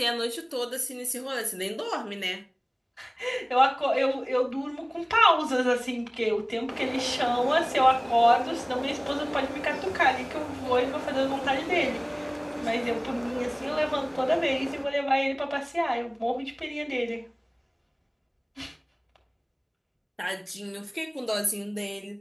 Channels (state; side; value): identical; both; correlation 1.00